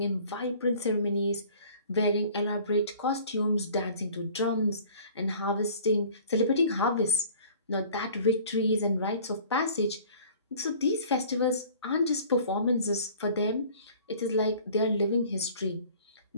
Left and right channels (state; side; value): inverted; both; correlation -0.48